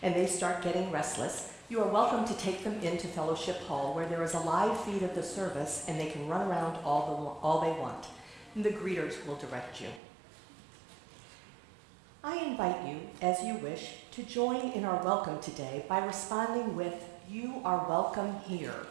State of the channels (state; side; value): drops out; left; at 10.0 s